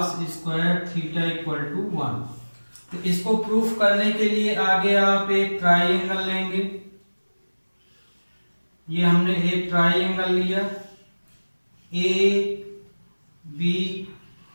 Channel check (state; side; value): inverted; both; correlation -1.00